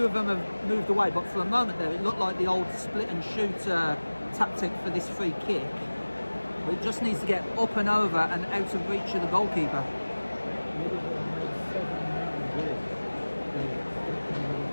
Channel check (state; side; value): inverted; both; correlation -1.00